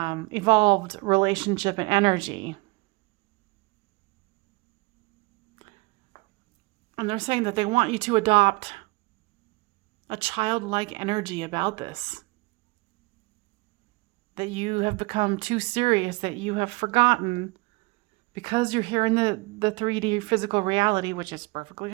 relationship and energy. And they're saying that they want you to adopt a childlike energy about this. That you have become too serious, that you have forgotten, because you're here in the 3D physical reality, which is perfectly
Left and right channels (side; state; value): left; quieter; 25.2 dB